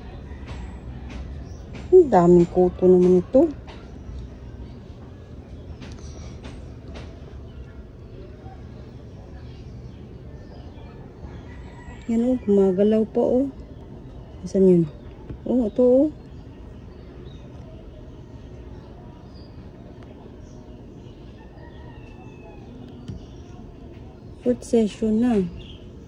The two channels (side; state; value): both; identical; correlation 1.00